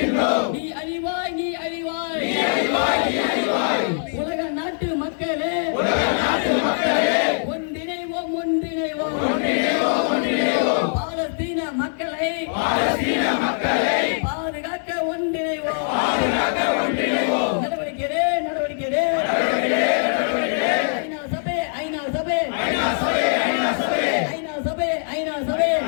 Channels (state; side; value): silent; right; digital silence